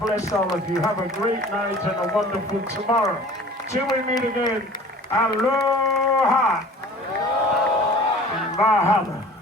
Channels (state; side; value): normal; both; correlation 0.45